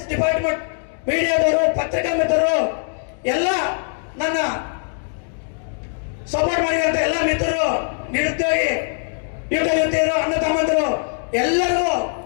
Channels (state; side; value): silent; right; digital silence